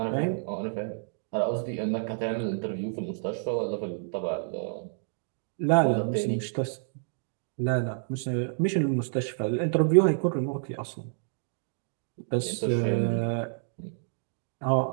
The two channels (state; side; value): silent; left; digital silence